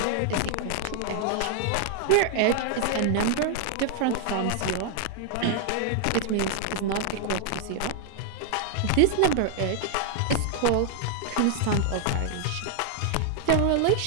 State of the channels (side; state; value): both; different; correlation 0.00